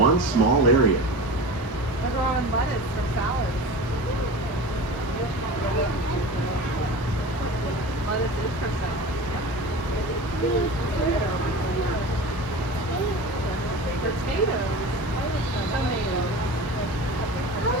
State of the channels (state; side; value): late; right; 1.4 ms